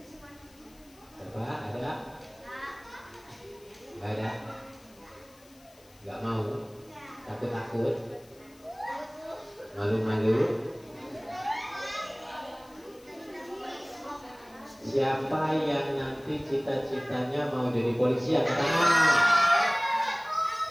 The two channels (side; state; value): left; noise; hiss, 27 dB below the sound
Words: Siapa? Ada? Gak ada? Gak mau? Takut-takut? Malu-malu? Siapa yang nanti cita-citanya mau jadi polisi? Angkat tangan.